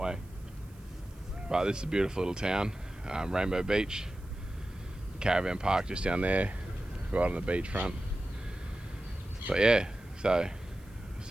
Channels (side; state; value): right; noise; hiss, 28 dB below the sound